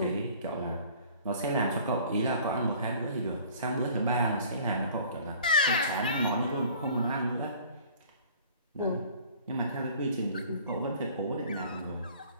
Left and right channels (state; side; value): inverted; both; correlation -0.50